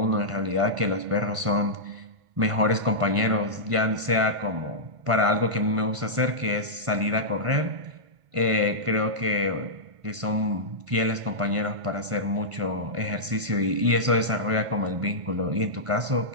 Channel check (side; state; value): left; late; 1.5 ms